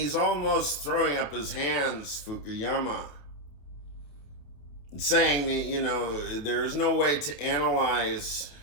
almost throwing up his hands, Fukuyama, saying that, there is no way to analyze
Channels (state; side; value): late; right; 28 ms